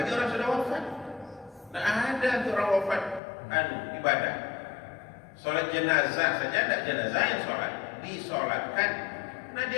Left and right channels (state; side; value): drops out; right; at 3.2 s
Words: orang sudah wafat, tidak ada untuk orang wafat ibadah. Sholat jenazah saja tidak jenazah yang sholat, disolatkan. Nah, dia